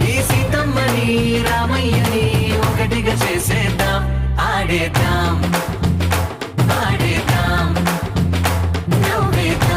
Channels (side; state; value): both; identical; correlation 1.00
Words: ఈ సీతమ్మని రామయ్యని ఒకటిగా చేసేద్దాం ఆడేద్దాం